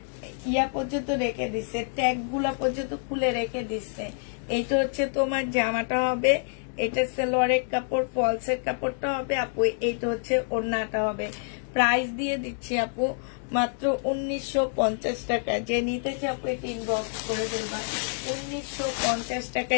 ইয়া পর্যন্ত রেখে দিচ্ছে, ট্যাগ গুলা পর্যন্ত খুলে রেখে দিচ্ছে। এইটা হচ্ছে তোমার জামাটা হবে, এটা সালোয়ারের কাপড়, ফলসের কাপড়টা হবে আপু, এইটা হচ্ছে ওড়নাটা হবে। প্রাইস দিয়ে দিচ্ছি আপু মাত্র 1950 টাকা। যে নিতে চাই আপু এটা ইনবক্স করে ফেলবা। 1950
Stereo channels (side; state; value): right; silent; 60 dB below the other